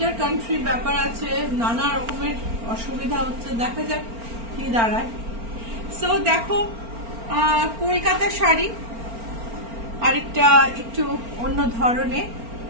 কান্ট্রি ব্যাপার আছে, নানা রকমের অসুবিধা হচ্ছে, দেখা যাক কি দাঁড়ায়। সো দেখো কলকাতা শাড়ি, আরেকটা একটু অন্য ধরনের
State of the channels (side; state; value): left; late; 4.4 ms